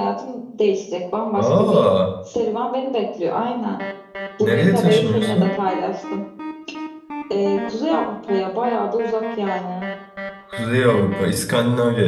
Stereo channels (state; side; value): identical; both; correlation 1.00